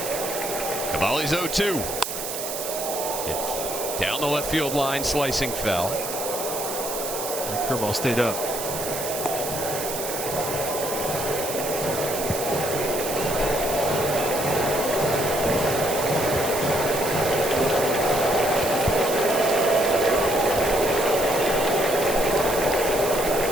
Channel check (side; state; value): right; noise; hiss, 6 dB below the sound